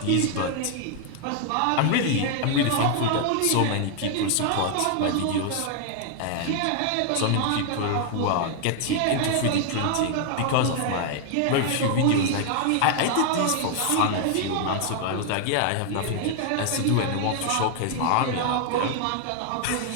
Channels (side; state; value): both; different; correlation 0.00